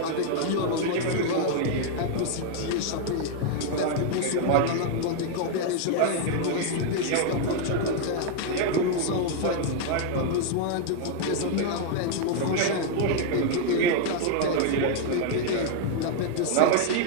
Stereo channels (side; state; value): both; different; correlation 0.00